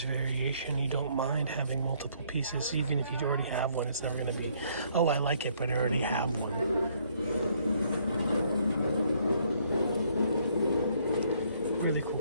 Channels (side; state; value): both; inverted; correlation -0.66